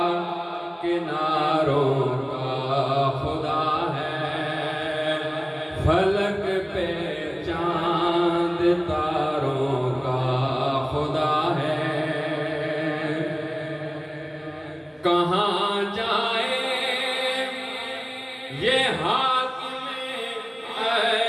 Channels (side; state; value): both; identical; correlation 1.00